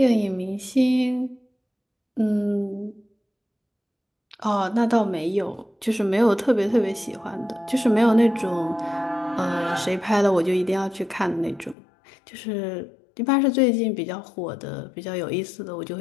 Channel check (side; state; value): right; drops out; at 11.8 s